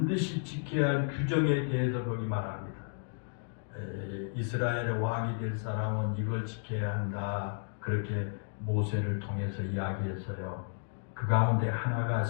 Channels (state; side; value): silent; right; digital silence